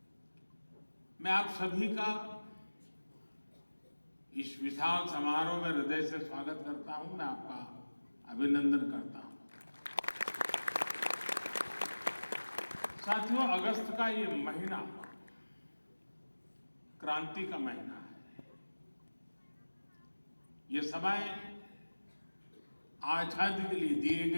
मैं आप सभी का इस विशाल समारोह में हृदय से स्वागत करता हूं। मैं आपका अभिनंदन करता हूं। साथियों, अगस्त का ये महीना क्रांति का महीना है। ये समय आजादी के लिए दिए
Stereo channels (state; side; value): inverted; both; correlation -1.00